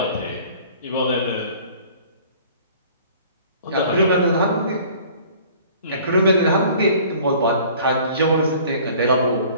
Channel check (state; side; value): inverted; both; correlation -0.50